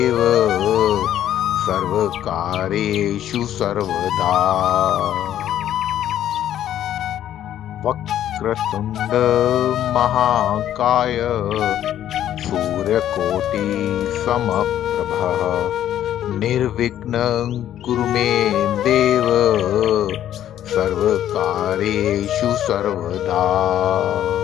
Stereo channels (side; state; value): right; quieter; 11.4 dB